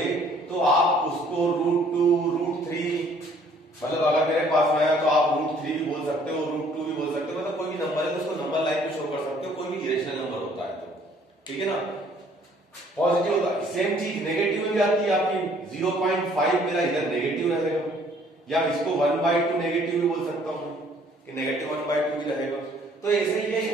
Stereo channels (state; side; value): normal; both; correlation 0.59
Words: तो आप उसको √2, √3, मतलब अगर मेरे पास में आया तो आप √3 भी बोल सकते हो, √2 भी बोल सकते हो। मतलब कोई भी नंबर है तो उसको नंबर लाइन पे शो कर सकते हो, कोई भी इरेशनल नंबर होता है तो। ठीक है ना, पॉजिटिव होता है। सेम चीज नेगेटिव में भी आती है आपकी। 0.5 मेरा इधर नेगेटिव रहेगा, या इसको 1/2 नेगेटिव भी बोल सकता हूं कि नेगेटिव 1/2 भी रहेगा। तो ऐसे ही ये